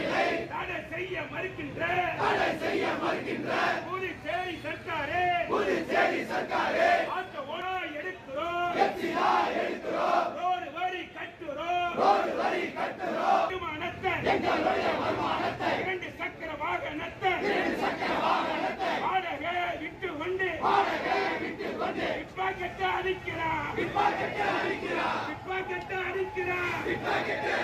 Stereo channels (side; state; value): both; identical; correlation 1.00